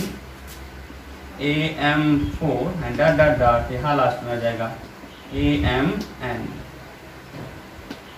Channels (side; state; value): both; identical; correlation 1.00